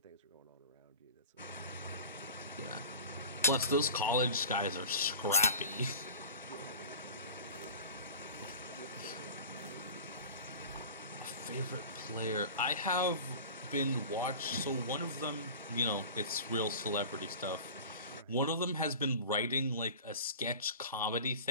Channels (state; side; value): inverted; both; correlation -0.36